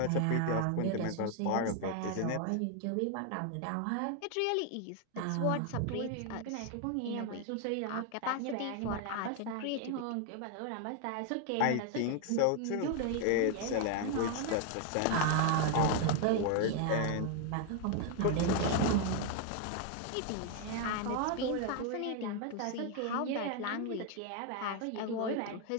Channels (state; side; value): different; both; correlation 0.00